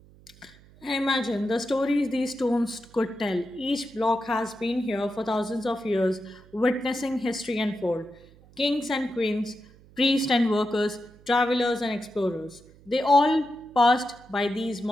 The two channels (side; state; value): right; noise; hum, 25 dB below the sound